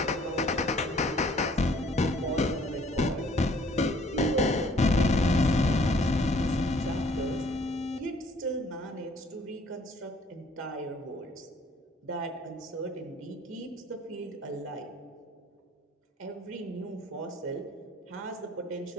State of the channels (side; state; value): both; normal; correlation 0.58